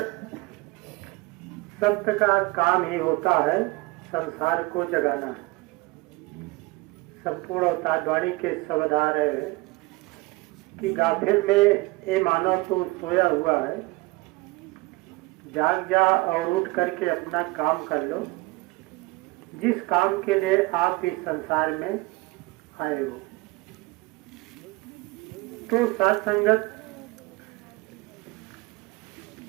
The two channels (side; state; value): left; quieter; 22.8 dB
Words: संत का काम ही होता है संसार को जगाना। संपूर्ण अवतारवाणी के शब्द आ रहे हैं कि गाफिल में ये मानव तो सोया हुआ है, जाग जा और उठ करके अपना काम कर लो, जिस काम के लिए आप इस संसार में आए हो। तो साथ संगत,